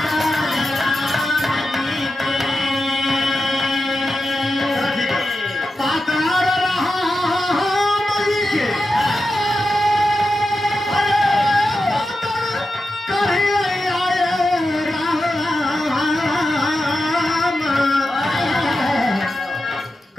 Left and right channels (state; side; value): normal; both; correlation 0.90